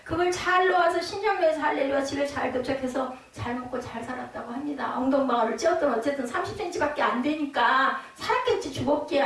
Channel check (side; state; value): both; identical; correlation 1.00